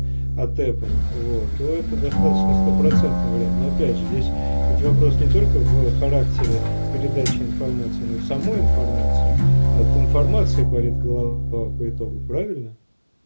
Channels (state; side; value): inverted; both; correlation -1.00